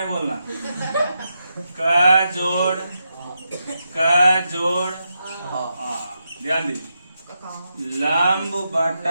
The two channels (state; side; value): inverted; both; correlation -0.85